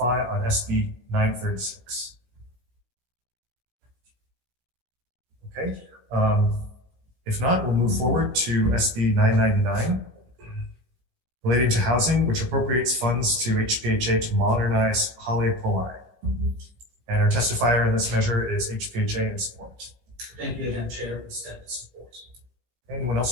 on SB 936? Okay. If not, we'll move forward to SB 999, relating to housing, which appropriates funds to HPHA to modernize HOU. And our testifier in this measure is HPHA in support. Thank you again, Chair. We stand in support. Anyone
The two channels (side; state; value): left; late; 17 ms